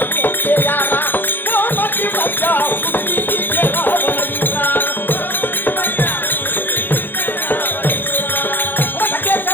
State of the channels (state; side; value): late; right; 0.096 ms